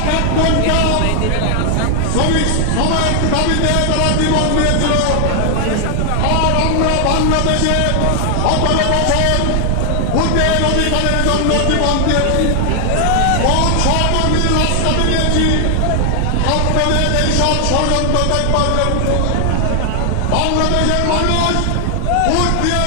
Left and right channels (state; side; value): different; both; correlation 0.00